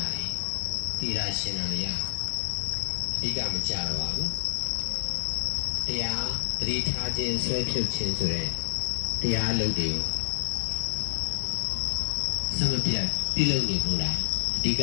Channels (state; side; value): silent; right; digital silence